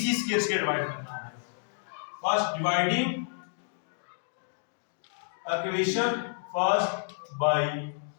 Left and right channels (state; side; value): silent; right; digital silence